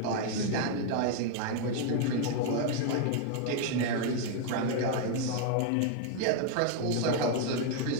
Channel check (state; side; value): different; both; correlation 0.01